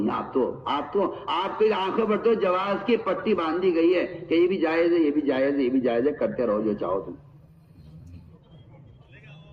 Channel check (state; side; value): identical; both; correlation 1.00